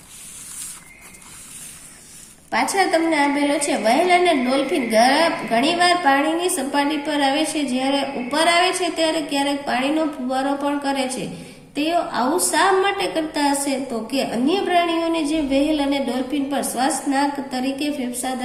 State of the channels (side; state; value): both; identical; correlation 1.00